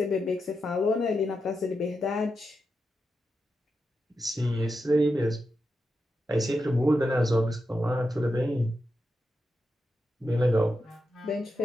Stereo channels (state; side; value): normal; both; correlation 0.87